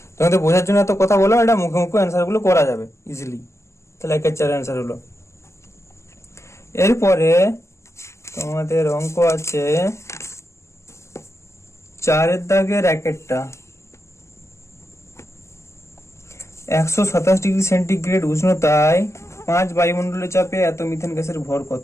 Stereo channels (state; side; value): late; right; 0.13 ms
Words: তোমাদের বোঝার জন্য এত কথা বলো, এটা মুখে মুখে অ্যান্সার গুলো করা যাবে ইজিলি। তাহলে 1/4 অ্যান্সার হলো। এরপরে তোমাদের অঙ্ক আছে 4 দাগের একটা 127 ডিগ্রি সেন্টিগ্রেড উষ্ণতায় 5 বায়ুমণ্ডলের চাপে এত মিথেন গ্যাসের ভর